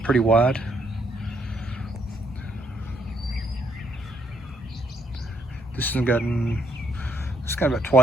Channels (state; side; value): normal; both; correlation 0.72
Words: pretty wide. This has gotten, it's got about